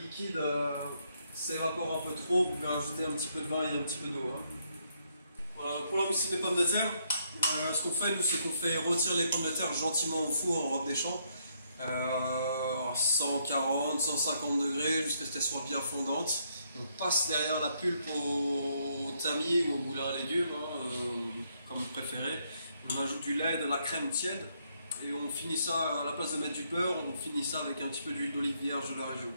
s'évapore un peu trop, vous pouvez rajouter un petit peu de vin et un petit peu d'eau. Hein. Voilà, pour la mousseline des pommes de terre, ce qu'on fait nous, c'est qu'on fait rôtir les pommes de terre gentiment au four en robe des champs, à 140, 150 degrés jusqu'à ce qu'elles soient bien fondantes. On passe derrière la pulpe au tamis ou au moulin à légumes, hein, comme vous préférez. On ajoute du lait, de la crème tiède. Et on finit ça, à la place de mettre du beurre, on finit ça avec un petit peu d'huile d'olive vierge de la région.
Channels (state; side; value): inverted; both; correlation -0.74